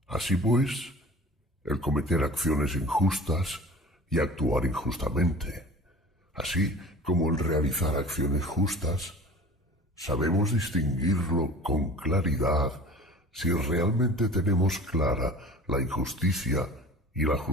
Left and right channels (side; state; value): both; normal; correlation 0.41